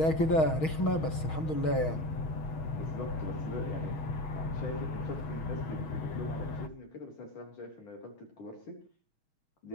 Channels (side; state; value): right; late; 6.3 ms